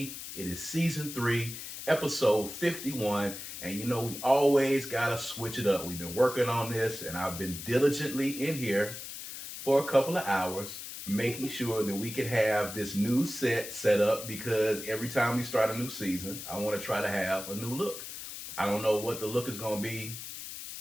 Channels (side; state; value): left; noise; hiss, 9 dB below the sound